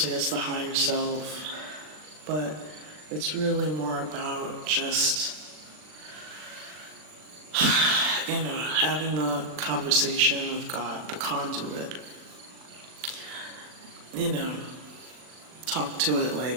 it's the higher self, but it's really more about just, you know, having the conversation with God, the conduit. You know, talk to it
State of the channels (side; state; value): left; late; 39 ms